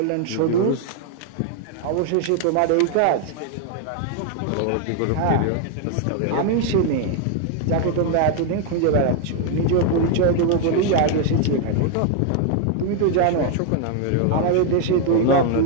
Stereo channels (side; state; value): both; different; correlation 0.00